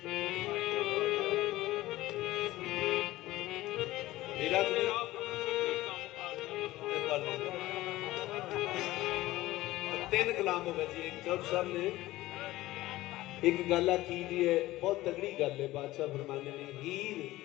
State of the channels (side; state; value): right; quieter; 17.2 dB